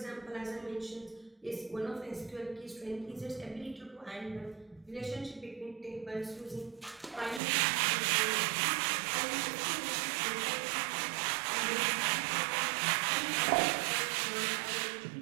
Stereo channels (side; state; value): left; drops out; at 7.4 s